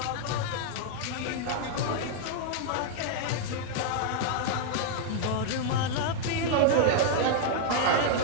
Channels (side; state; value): both; different; correlation -0.01